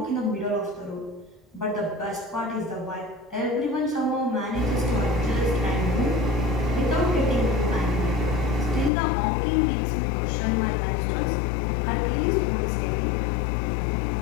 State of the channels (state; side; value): drops out; right; at 8.9 s